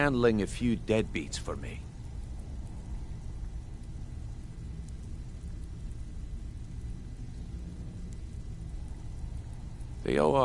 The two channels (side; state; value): both; identical; correlation 1.00